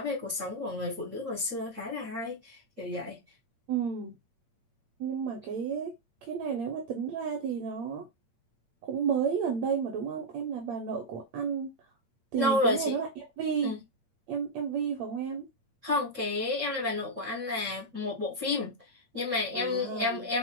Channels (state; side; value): late; left; 8.7 ms